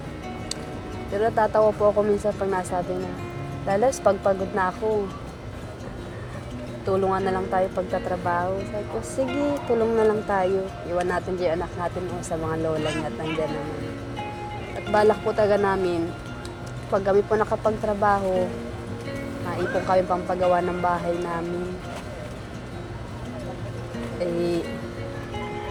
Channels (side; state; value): both; identical; correlation 1.00